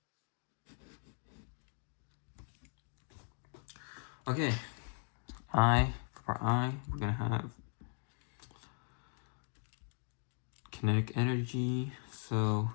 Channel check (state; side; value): silent; right; 52 dB below the other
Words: Okay, for I, we're going to have kinetic energy. So,